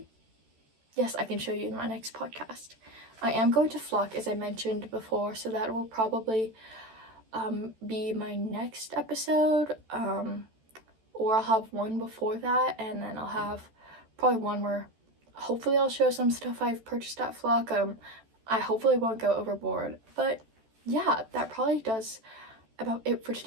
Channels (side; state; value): left; late; 14 ms